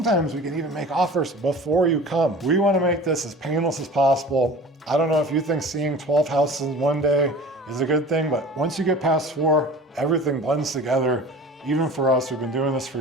we can even make offers before you come. We want to make this as painless as possible. I don't know if you think seeing 12 houses in one day is a good thing, but once you get past 4, everything blends together. Even for us, we've been doing this for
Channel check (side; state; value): both; normal; correlation 0.40